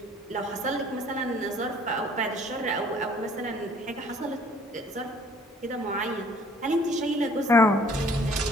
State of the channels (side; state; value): both; normal; correlation 0.56